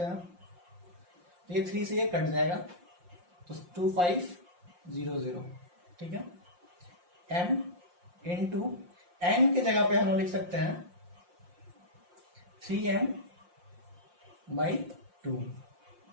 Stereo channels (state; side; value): late; left; 5.7 ms